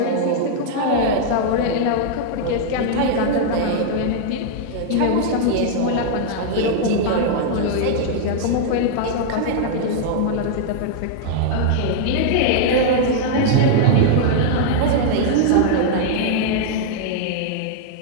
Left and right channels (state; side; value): different; both; correlation -0.01